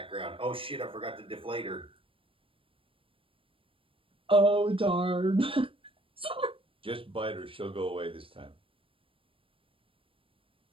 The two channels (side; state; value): left; late; 0.26 ms